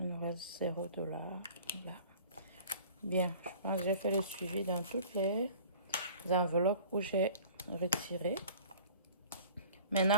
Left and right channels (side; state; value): both; inverted; correlation -0.47